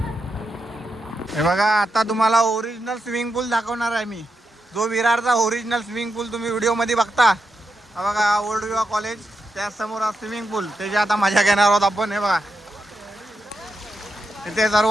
हे बघा आता तुम्हाला ओरिजिनल स्विमिंग पूल दाखवणार आहे मी. जो विरारचा ओरिजिनल स्विमिंग पूल तुम्ही व्हिडिओ मध्ये बघता. हा बघा ओल्ड विवा कॉलेज, त्या समोर स्विमिंग पूल. त्याची आता मजा घेणार आहोत आपण. हे बघा इथे सर्व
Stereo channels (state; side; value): normal; both; correlation 0.86